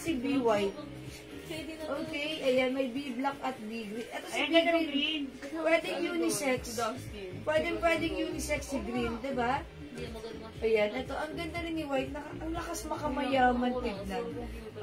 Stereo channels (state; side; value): identical; both; correlation 1.00